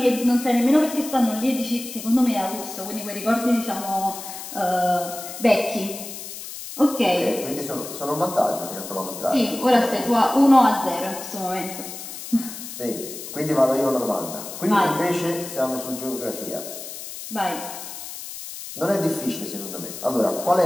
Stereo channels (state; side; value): noise; left; hiss, 10 dB below the sound